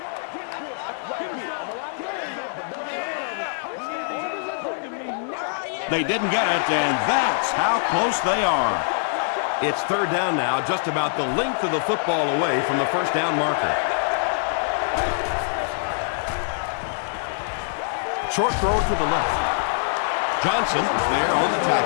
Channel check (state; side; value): silent; right; digital silence